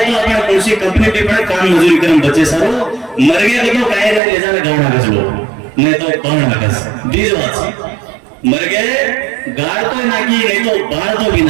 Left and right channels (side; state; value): left; drops out; at 4.2 s